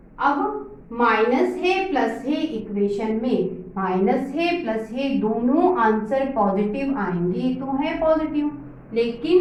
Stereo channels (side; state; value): both; identical; correlation 1.00